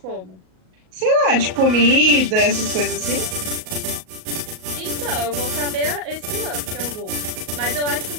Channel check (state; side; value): late; left; 38 ms